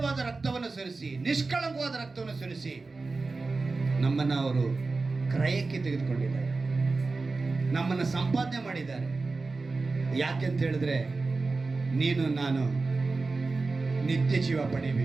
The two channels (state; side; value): quieter; left; 3.8 dB